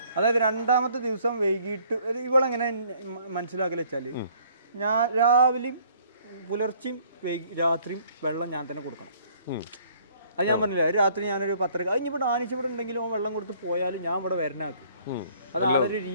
അതായത് 2ാമത്തെ ദിവസം വൈകിട്ട് ഇവളെങ്ങനെ മനസ്സിലാക്കല് വെച്ചാല്, ഞാൻ രാവിലെയും പുലർച്ചെയും രാത്രിയും വെള്ളം ഞാൻ തന്നെ കൊടുക്കണം. അത് ഞാൻ പറഞ്ഞില്ല, രാത്രി ഞാനൊരു 10:30 കഴിഞ്ഞിവിടെ ആനിച്ചിവിടെ ഉണ്ടെങ്കിലും വെള്ളം കൊടുത്ത് പോയാലും ഞാൻ ഇവിടെ വരണാക്കും. അത് ആളൊരു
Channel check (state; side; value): inverted; both; correlation -0.60